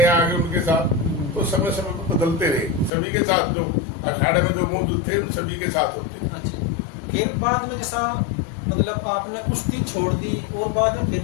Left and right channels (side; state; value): right; drops out; at 2.9 s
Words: आ गए उनके साथ। तो समय समय पर बदलते रहे, सभी के साथ जो अखाड़े में जो मौजूद थे उन सभी के साथ होते थे। अच्छा। फिर बाद में जैसा मतलब आपने कुश्ती छोड़ दी और बाद में फिर